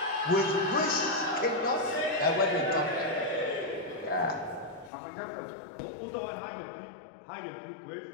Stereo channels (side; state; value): right; drops out; at 4.9 s